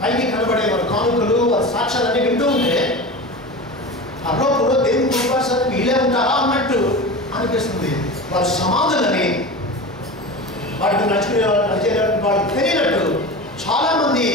కనబడే వారి కానుకలు, వారి సాక్ష్యాలన్నీ వింటూ ఉంటే పరలోకంలో దేవుని కుటుంబానికి వీలే ఉంటారా అన్నట్టు అనిపిస్తుంది. వారి సమాధులని వాటికి నడుచుకునే వాళ్ళకి తెలియనట్టు చాలామంది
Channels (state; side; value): normal; both; correlation 0.29